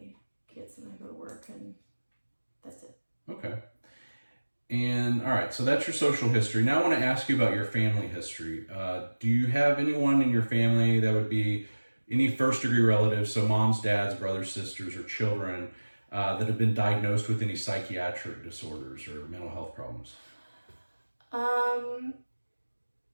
kids, and I go to work, and that's it. Okay. And all right, so that's your social history. Now I want to ask you about your family history. Do you have anyone in your family that would be any first degree relatives, so moms, dads, brothers, sisters, or children that have been diagnosed with any psychiatric disorders or mental health problems?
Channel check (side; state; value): both; inverted; correlation -1.00